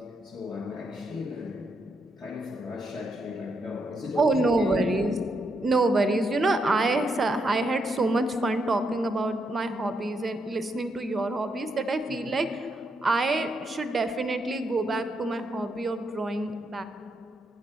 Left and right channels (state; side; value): normal; both; correlation 0.79